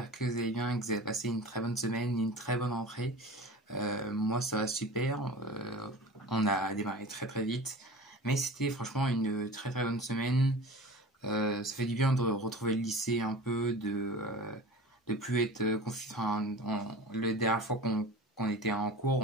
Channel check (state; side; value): normal; both; correlation 0.36